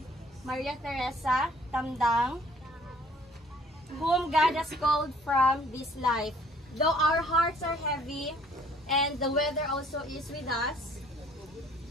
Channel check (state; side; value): normal; both; correlation 0.58